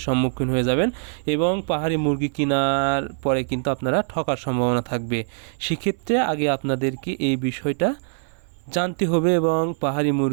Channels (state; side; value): silent; left; 56 dB below the other